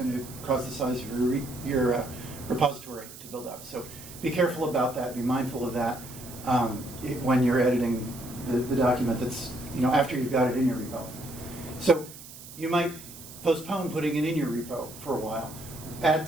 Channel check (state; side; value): noise; right; hiss, 16 dB below the sound